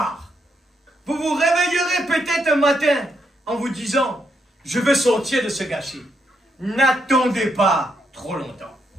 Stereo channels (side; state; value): both; normal; correlation 0.78